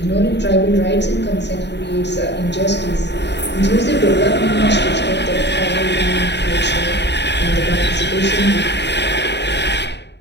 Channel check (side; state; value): right; late; 0.50 ms